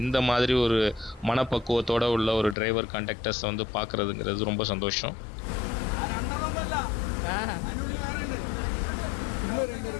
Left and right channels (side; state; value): right; drops out; at 2.6 s